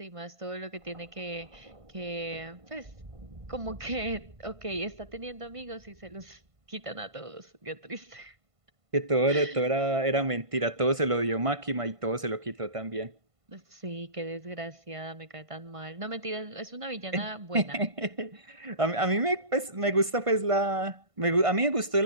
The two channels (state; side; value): late; left; 1.5 ms